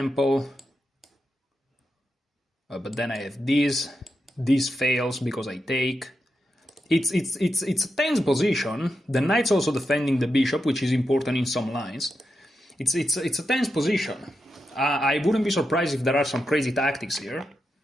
But then I have this. This fails because I take. It's a tense position. The knight's also defending the bishop, which is important in some lines. It's a tense position. I wouldn't be surprised if there are some crazy tactics here.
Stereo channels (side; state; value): both; normal; correlation 0.87